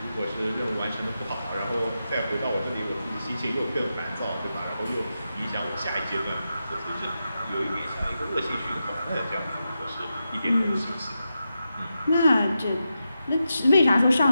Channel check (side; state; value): both; inverted; correlation -0.89